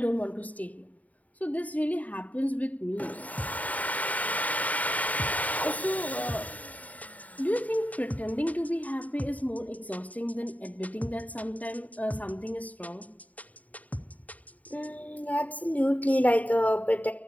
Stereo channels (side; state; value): right; late; 0.072 ms